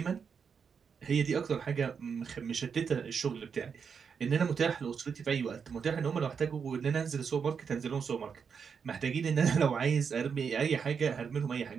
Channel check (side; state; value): left; quieter; 6.4 dB